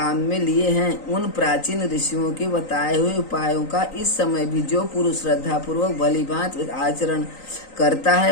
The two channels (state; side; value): late; right; 3.9 ms